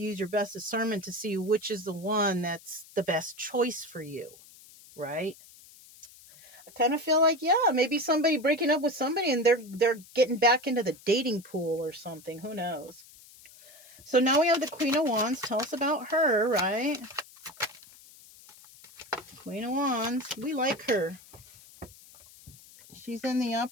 use your best discernment to see which is the one that's the best choice for you, right? I kind of feel like, yeah, maybe somebody breaking up with somebody and they're getting back into the dating pool or something. Who knows? So now we have the Queen of Wands. Tell us about her, right? Queen of Wands. We like her. She's in the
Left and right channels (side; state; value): left; noise; hiss, 22 dB below the sound